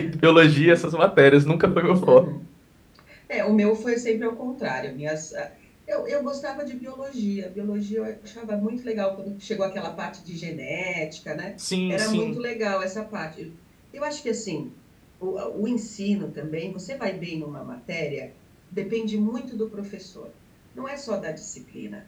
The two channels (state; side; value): identical; both; correlation 1.00